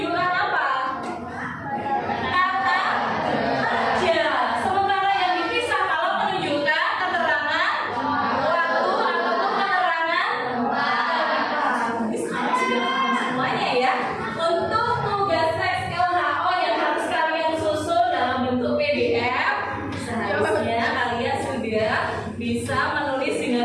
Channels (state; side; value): identical; both; correlation 1.00